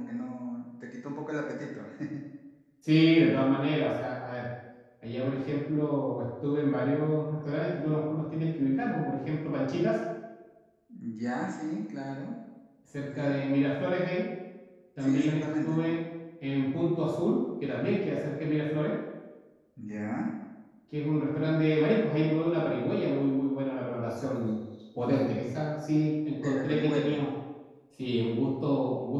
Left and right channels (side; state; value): both; identical; correlation 1.00